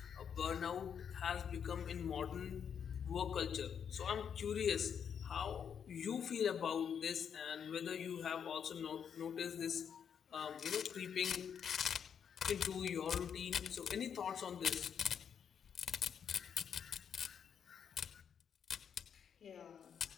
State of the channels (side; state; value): right; quieter; 7.7 dB